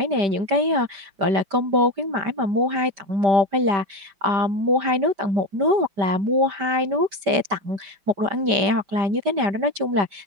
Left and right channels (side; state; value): left; late; 5.1 ms